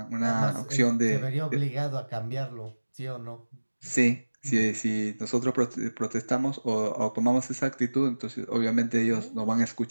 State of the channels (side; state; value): both; inverted; correlation -1.00